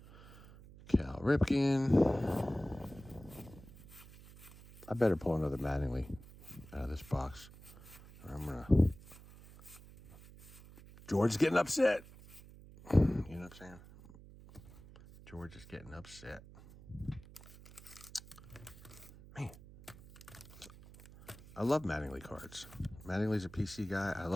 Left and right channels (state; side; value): noise; right; hum, 19 dB below the sound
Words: Cal Ripken. I better pull another Mattingly out of this box. Or I'm going to... George is getting upset. You know what I'm saying? George is getting upset. Man. I love Mattingly cards. Mattingly's a PC guy. I